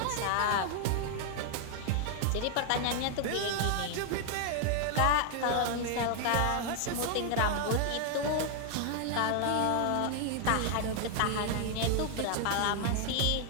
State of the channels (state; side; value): different; both; correlation 0.00